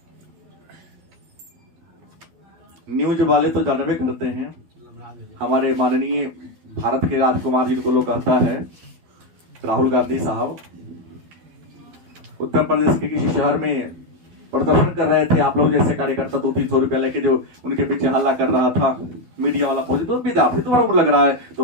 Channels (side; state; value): left; late; 12 ms